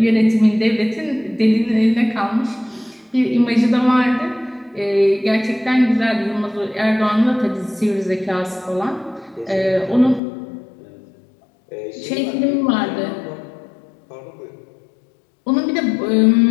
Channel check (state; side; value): drops out; right; at 10.2 s